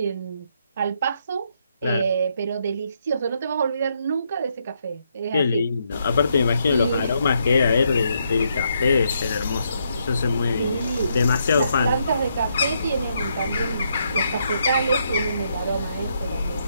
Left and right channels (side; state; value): both; inverted; correlation -0.76